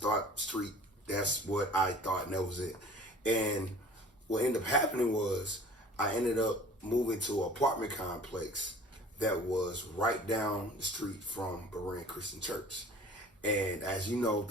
street, that's what I thought, and that was it. And what ended up happening was I ended up moving to an apartment complex that was right down the street from Berean Christian Church. And as you know,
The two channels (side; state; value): both; normal; correlation 0.47